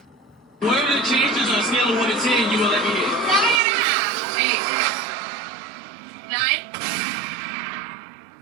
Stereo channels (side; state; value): left; drops out; at 3.6 s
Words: What are the chances on a scale of 1 to 10 you will let me hit? 7.5. 8. 9.